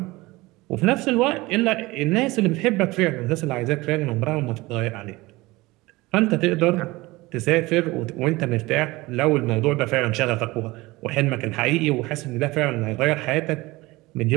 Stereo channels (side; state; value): left; quieter; 20.9 dB